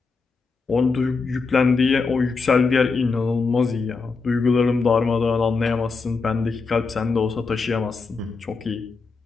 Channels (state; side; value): quieter; right; 4.4 dB